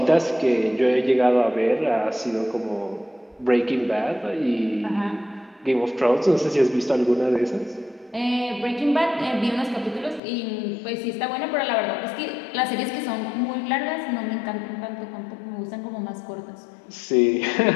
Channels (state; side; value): drops out; right; at 10.2 s